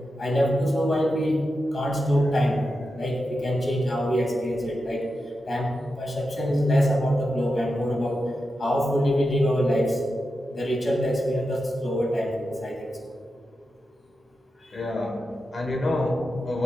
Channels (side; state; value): both; normal; correlation 0.89